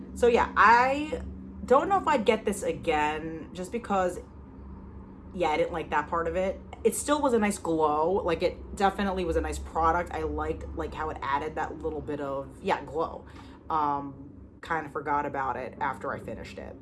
So yeah, I don't know if I'd get this again, just because, yeah, I didn't like that part of it. It still was a nice glow. Like, it definitely was a nice product. I liked like how it added that little bit of, yeah, glow. Kind of forgot about it after I finished it.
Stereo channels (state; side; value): identical; both; correlation 1.00